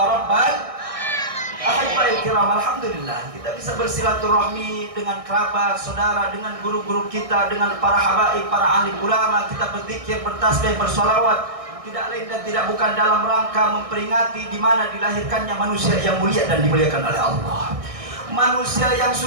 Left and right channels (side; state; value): left; late; 1.6 ms